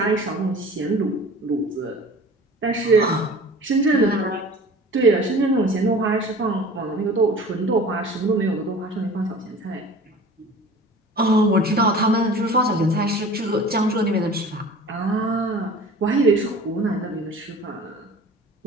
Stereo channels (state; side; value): normal; both; correlation 0.42